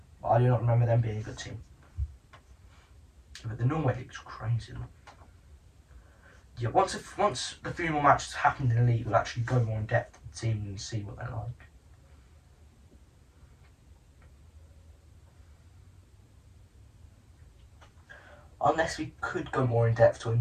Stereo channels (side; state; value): both; identical; correlation 1.00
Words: but I do not remember them being a good team. But the Norway League's crazy. Yeah, once the 3 more matches happened in the league, we'll actually go more in depth with the team and see what they're like. Unless we could go more in depth to a